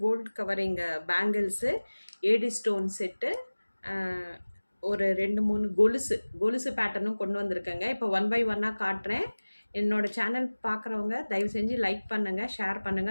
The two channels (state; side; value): inverted; both; correlation -1.00